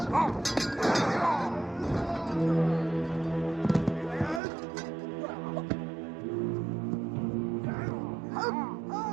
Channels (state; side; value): drops out; left; at 4.4 s